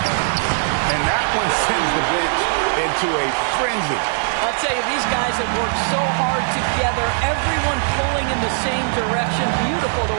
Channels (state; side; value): silent; left; digital silence